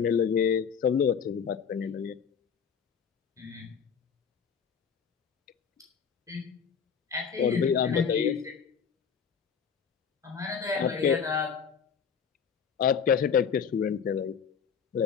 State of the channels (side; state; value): right; quieter; 6.8 dB